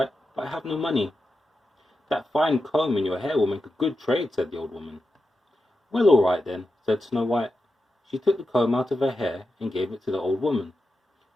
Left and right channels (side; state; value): both; normal; correlation 0.89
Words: "but I have no money." "That fine comb in your hair will make a good trade," said the old woman. "Well, all right then," said Snow White. She took the comb out of her hair and gave it to the old woman,